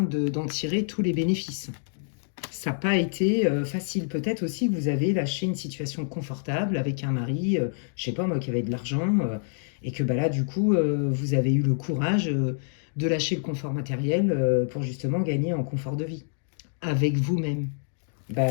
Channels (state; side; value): silent; right; digital silence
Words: d'en tirer tous les bénéfices. Ça n'a pas été facile. Peut-être aussi que vous avez lâché une situation confortable avec un mari, je sais pas moi, qui avait de l'argent, et que bah, là, du coup, vous avez eu le courage de lâcher le confort matériel pour justement gagner en confort de vie. Avec vous-même. Bah,